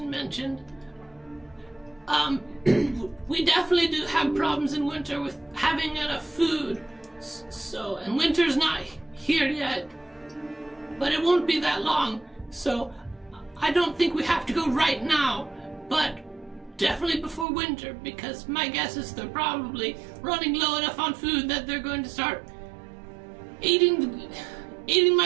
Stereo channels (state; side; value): drops out; left; at 17.4 s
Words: mentioned. We definitely do have problems in winter with having enough food. So, and winter's not here yet, but it won't be that long. So, I don't think we have to go right now, but definitely before winter, because my guess is they're probably running low enough on food that they're going to start eating